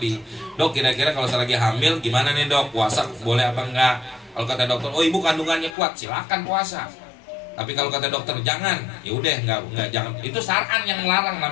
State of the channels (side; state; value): right; drops out; at 5.8 s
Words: dok kira-kira kalau saya lagi hamil gimana nih dok, puasa boleh apa enggak? Kalau kata dokter, oh ibu kandungannya kuat, silakan puasa. Tapi kalau kata dokter jangan, ya udah nggak jangan. Itu syar'an yang melarang